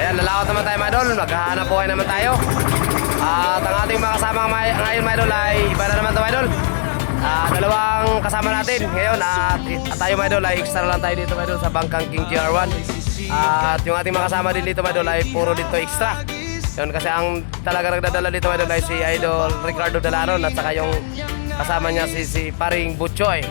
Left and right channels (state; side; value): silent; right; digital silence